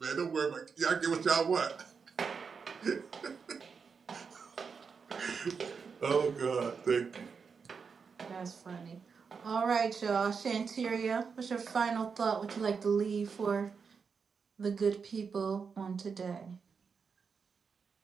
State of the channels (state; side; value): quieter; left; 5.7 dB